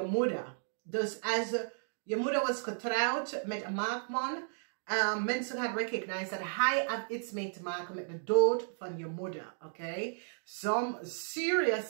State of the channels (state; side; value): silent; left; digital silence